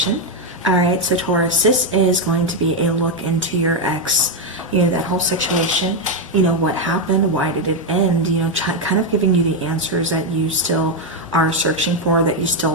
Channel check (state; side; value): normal; both; correlation 0.04